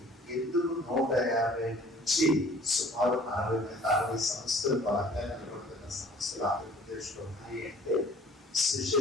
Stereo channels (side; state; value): both; normal; correlation 0.51